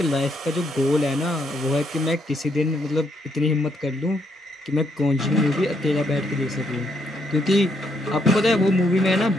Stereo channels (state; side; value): normal; both; correlation 0.74